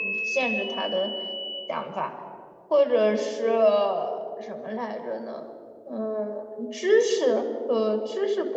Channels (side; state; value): both; identical; correlation 1.00